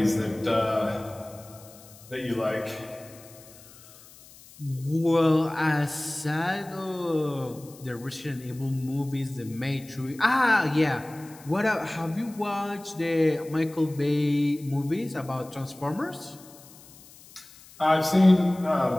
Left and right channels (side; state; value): left; noise; hiss, 22 dB below the sound